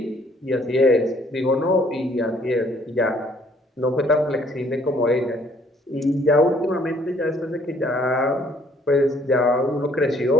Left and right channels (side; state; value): both; normal; correlation 0.62